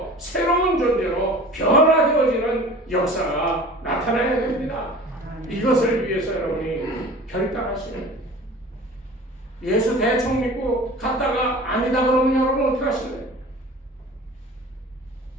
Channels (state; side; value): normal; both; correlation 0.41